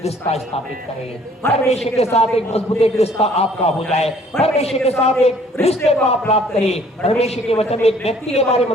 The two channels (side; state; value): both; normal; correlation 0.58